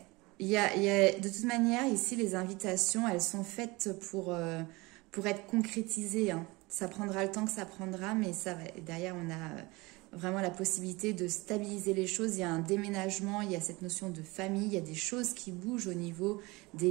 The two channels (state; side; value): quieter; left; 23.6 dB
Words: Il y a, de toute manière, ici, les invitations, elles sont faites pour être concrétisées. Hein. Ça prendra le temps que ça prendra, mais ça va. Derrière, on a vraiment la possibilité de stabiliser les choses. Il y a un déménagement, il y a cette notion de famille, il y a des choses qui bougent au niveau des